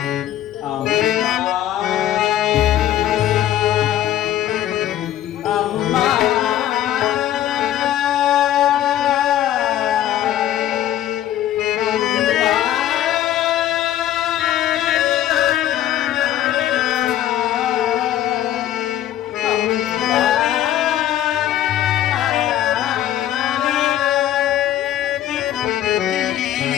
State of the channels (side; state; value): right; quieter; 12.1 dB